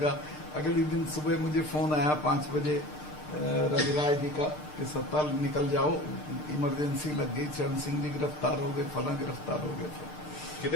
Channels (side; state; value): right; late; 6.6 ms